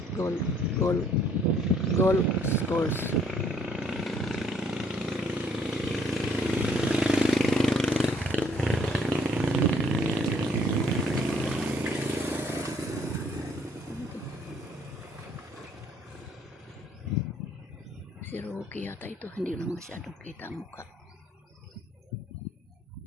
course. Si Rocky yata ito, hindi lang masyadong kita ang mukha.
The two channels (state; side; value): normal; both; correlation 0.63